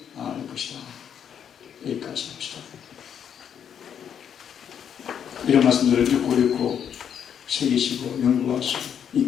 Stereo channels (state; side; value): quieter; right; 8.4 dB